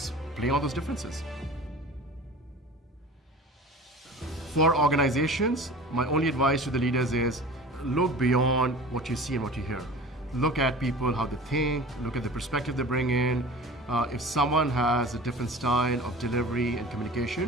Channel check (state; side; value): normal; both; correlation 0.39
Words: play on those differences. For organizations, my only advice to the leaders is look beyond what you see and what you hear. Look at people, how they think, look at the perspective they bring in. If someone has a different style of delivery and